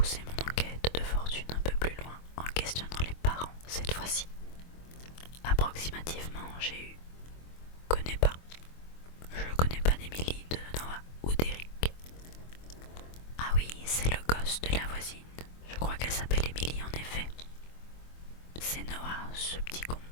mon enquête de fortune un peu plus loin en questionnant les parents cette fois-ci. Approximativement, j'ai eu connais pas. Je connais pas d'Émilie, de Noah ou d'Eric. Ah oui, c'est le gosse de la voisine. Je crois qu'elle s'appelle Émilie en effet. C'est Noah, ce petit con.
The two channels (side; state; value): right; late; 24 ms